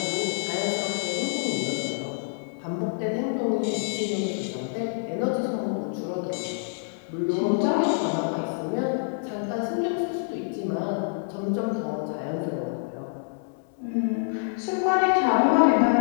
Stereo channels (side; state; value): right; silent; digital silence